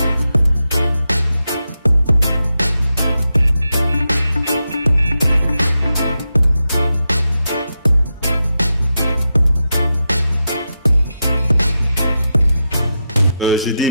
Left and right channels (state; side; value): inverted; both; correlation -0.88